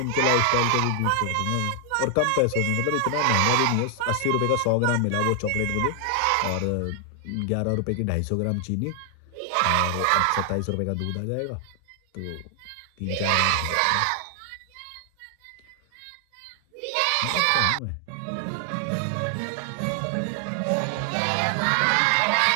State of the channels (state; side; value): different; both; correlation 0.00